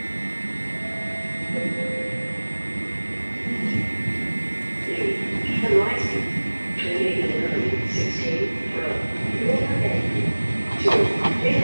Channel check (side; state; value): both; inverted; correlation -1.00